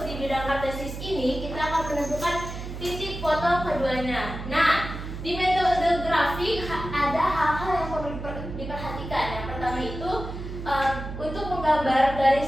di bidang kartesius ini, kita akan menentukan titik potong keduanya. Nah, di metode grafik ada hal-hal yang perlu diperhatikan. Yang pertama itu untuk menggambar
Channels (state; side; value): noise; right; hum, 8 dB below the sound